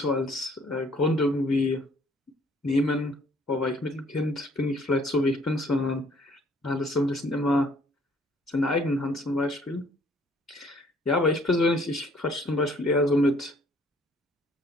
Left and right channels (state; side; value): normal; both; correlation 0.60